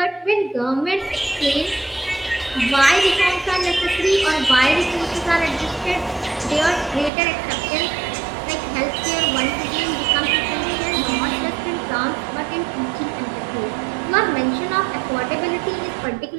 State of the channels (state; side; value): drops out; left; at 7.1 s